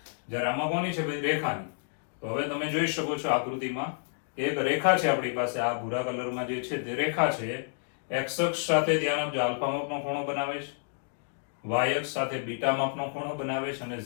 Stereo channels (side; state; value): right; silent; digital silence